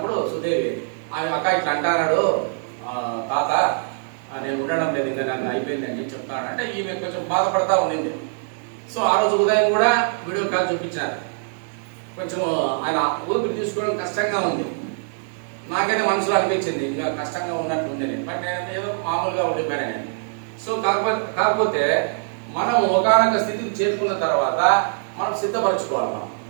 సుదేవి ఆమె అక్క ఇట్లా అంటాడు తాత, నేను ఉండడం లేదు ఇంకా, నన్ను అయిపోయింది అని చెప్తాను అంటే ఈమె కొంచెం బాధపడతా ఉండింది. సో ఆ రోజు ఉదయం కూడా వీడియో కాల్ చూపించారు. కొంచెం ఆయన ఊపిరి తీసుకోవడం కష్టంగా ఉంది. నాకైతే మనసులో అనిపించింది ఇంకా కష్టంగా ఉన్నట్టు ఉంది నేను, బట్ నేను ఏదో మామూలుగా ఉండిపోయాను నేను. సో కాకపోతే మనం ఒకనొక స్థితికి చేరుకున్న తర్వాత మనం సిద్ధపరచుకోవాలి.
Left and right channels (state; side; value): silent; left; digital silence